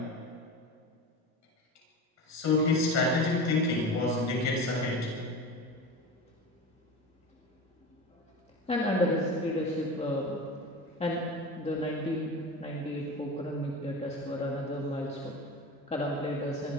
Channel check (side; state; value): both; normal; correlation 0.29